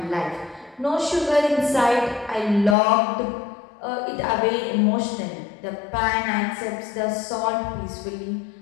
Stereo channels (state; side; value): drops out; right; at 2.8 s